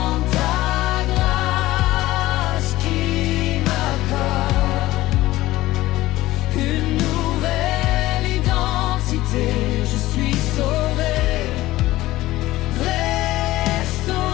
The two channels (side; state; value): right; quieter; 17.0 dB